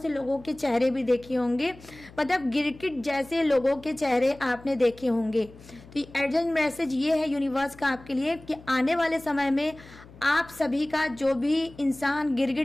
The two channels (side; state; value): left; noise; hum, 21 dB below the sound